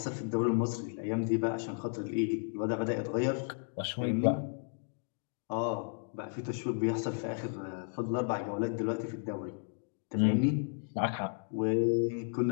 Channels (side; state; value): right; silent; 55 dB below the other